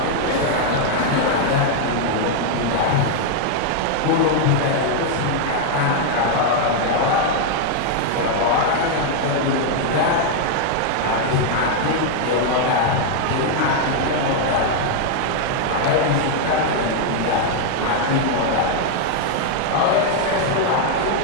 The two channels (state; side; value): different; both; correlation 0.00